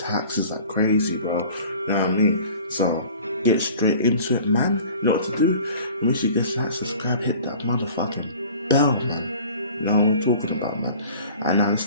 It's like crazy, bro. You know what I mean? So, get straight into it, man. You know what to do? Make sure you get like, subscribe, hit that motherfucking bell, man. You know what we're talking about, man. And now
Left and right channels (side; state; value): both; inverted; correlation -0.45